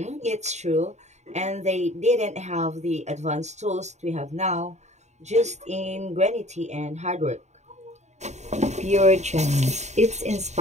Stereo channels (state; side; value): late; left; 0.33 ms